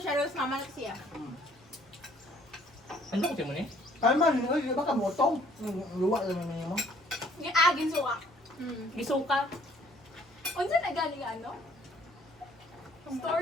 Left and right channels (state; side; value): normal; both; correlation 0.61